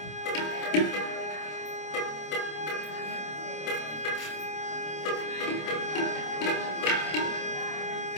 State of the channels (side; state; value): right; late; 26 ms